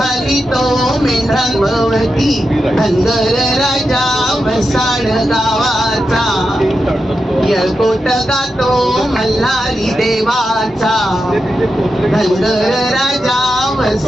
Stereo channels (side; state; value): both; normal; correlation 0.89